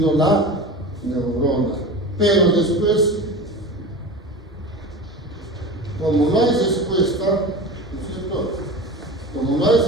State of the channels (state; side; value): normal; both; correlation 0.31